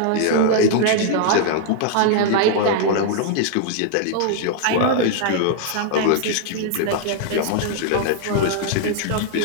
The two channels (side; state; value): both; different; correlation -0.01